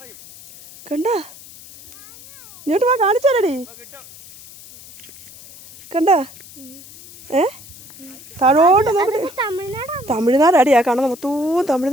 കണ്ട. ഇങ്ങോട്ട് വാ, കാണിച്ചാലടി. കണ്ട താഴോട്ട് നോക്കി. തമിഴ്നാടാടി ആ കാണുന്ന മൊത്തവും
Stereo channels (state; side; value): noise; left; hiss, 19 dB below the sound